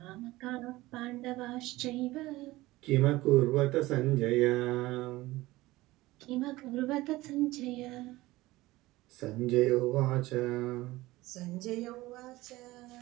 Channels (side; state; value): left; quieter; 18.7 dB